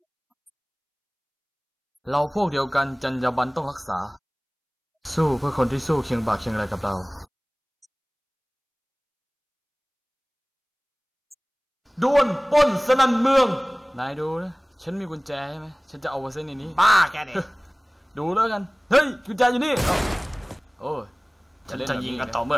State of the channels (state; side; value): identical; both; correlation 1.00